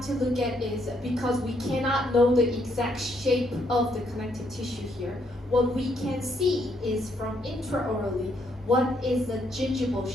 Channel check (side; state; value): both; normal; correlation 0.73